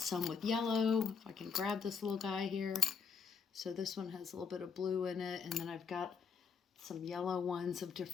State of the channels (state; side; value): quieter; right; 5.9 dB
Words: with yellow. If I can grab this little guy here. So this one has a little bit of blue in it, and then I've got some yellow ones of